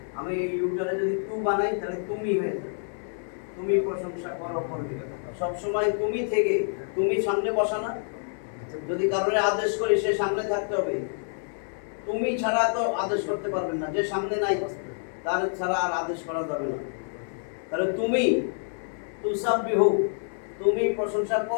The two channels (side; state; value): right; silent; digital silence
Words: আমি ইউটারে যদি তু বানাই তাহলে তুমি হয়ে যাবে, তুমি প্রশংসা করবে। সবসময় তুমি থেকে, তুমি সামনে বসা না, যদি কারণে আদেশ করি সে সামনে থাকতে হবে। তুমি ছাড়া তো আদেশ করতে পারবেন না, যে সামনে নাই তার ছাড়া আর আদেশ করা যাবে না। তাহলে তুমি তুসাব্বিহু, তুমি প্রশংসা